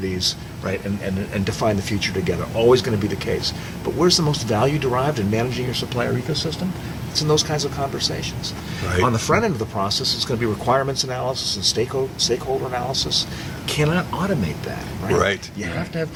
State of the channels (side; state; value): both; identical; correlation 1.00